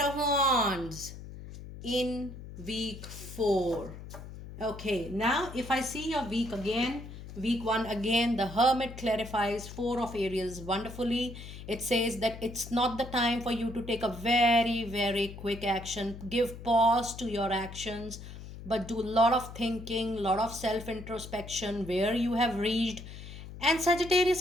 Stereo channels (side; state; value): left; noise; hum, 13 dB below the sound